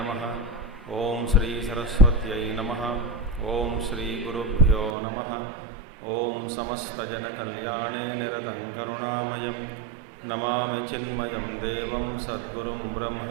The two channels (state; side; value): drops out; left; at 5.0 s